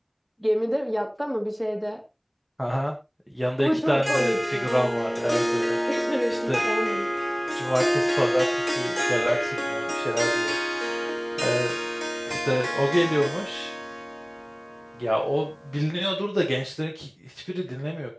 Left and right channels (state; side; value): identical; both; correlation 1.00